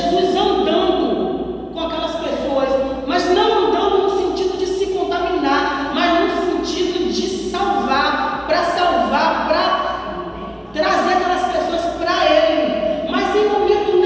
andando com aquelas pessoas, mas não andando no sentido de se contaminar, mas no sentido de salvar, para trazer aquelas pessoas para Ele. Mas em momento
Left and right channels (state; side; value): identical; both; correlation 1.00